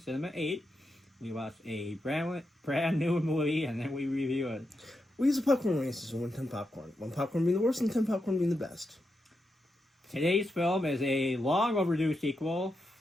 8. We watch a brand new movie and then we review it. We use a popcorn rating system with 10 popcorn. 1 popcorn being the worst and 10 popcorn being the best. Today's film is a long overdue sequel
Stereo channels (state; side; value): normal; both; correlation 0.86